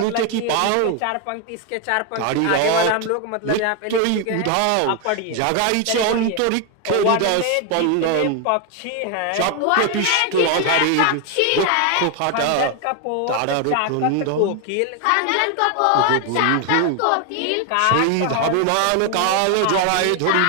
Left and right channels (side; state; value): both; different; correlation 0.01